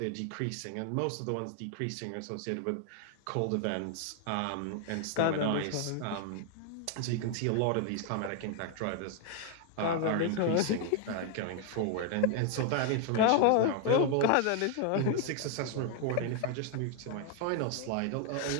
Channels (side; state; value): both; different; correlation 0.00